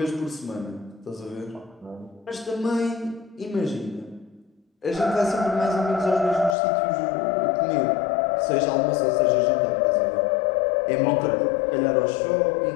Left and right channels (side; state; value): right; drops out; at 6.6 s